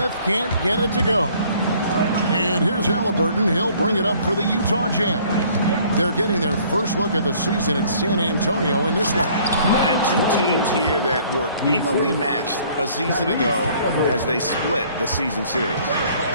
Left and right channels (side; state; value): both; inverted; correlation -0.57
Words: can't get it to go. And here's Halliburton. He'll bring it up for the Utah Jazz. They're getting their first look at the season in San Antonio in this one. And 2 teams here that were evenly matched a season ago as they split the season series.